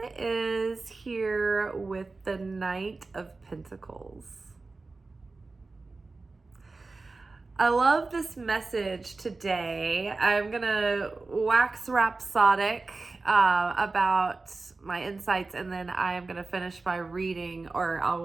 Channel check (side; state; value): left; quieter; 3.7 dB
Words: is here with the Knight of Pentacles. I love this message today. I'm going to wax rhapsodic about my insights, and then I am going to finish by reading, or I